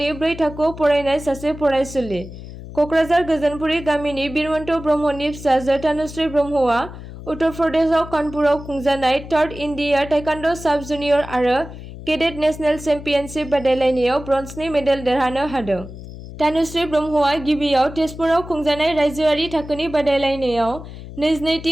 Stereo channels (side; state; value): left; noise; hum, 13 dB below the sound